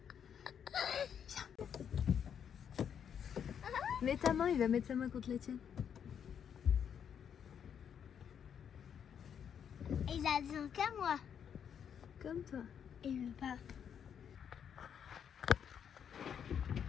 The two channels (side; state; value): right; quieter; 8.1 dB